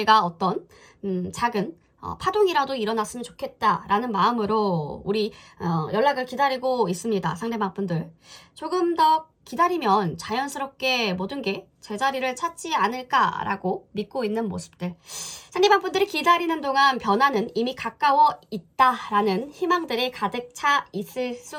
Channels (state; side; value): identical; both; correlation 1.00